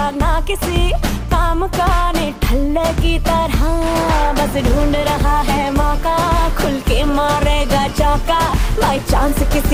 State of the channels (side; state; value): both; identical; correlation 1.00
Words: ना किसी काम का, निठल्ले की तरह बस ढूंढ रहा है मौका, खुल के मारेगा चौका बाई चांस